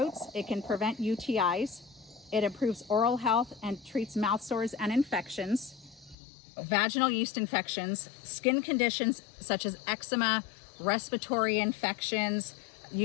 It can prevent UTIs. It improves oral health and treats mouth sores and infections, vaginal yeast infections, skin conditions such as eczema, respiratory infections,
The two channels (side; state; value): right; drops out; at 6.2 s